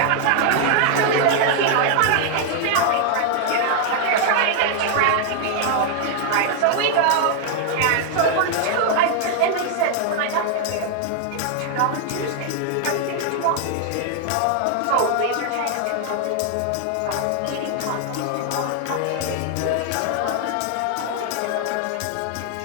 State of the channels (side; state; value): both; different; correlation 0.00